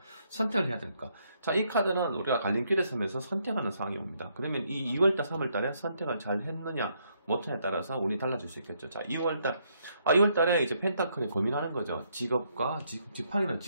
선택을 해야 될까. 자, 이 카드는 우리가 갈림길에 서면서 선택하는 상황이 옵니다. 그러면 이 2월달 3월달에 선택을 잘 했느냐 못했느냐에 따라서 운이 달라질 수 있겠죠. 자, 2월달에 이제 펜타클에 고민하는 거죠. 직업과 지팡이는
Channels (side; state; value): both; inverted; correlation -0.73